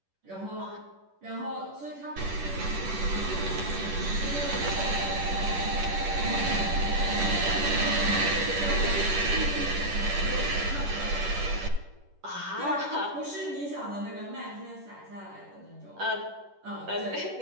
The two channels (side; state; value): left; late; 10 ms